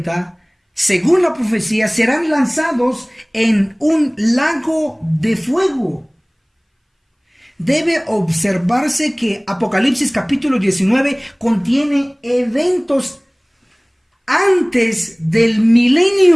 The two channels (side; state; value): both; identical; correlation 1.00